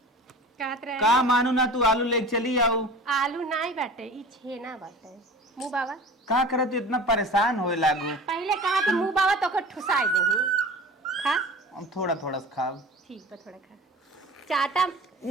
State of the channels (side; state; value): both; normal; correlation 0.38